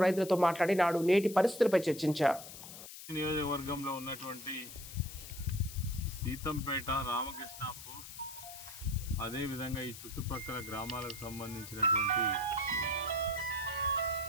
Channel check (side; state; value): left; noise; hiss, 13 dB below the sound